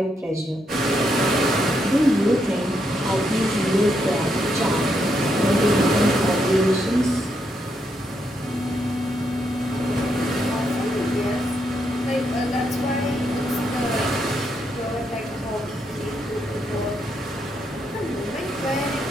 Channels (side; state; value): both; normal; correlation 0.79